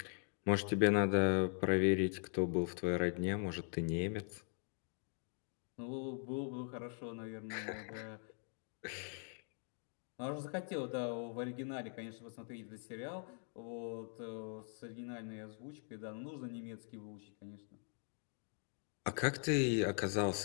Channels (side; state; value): right; silent; 50 dB below the other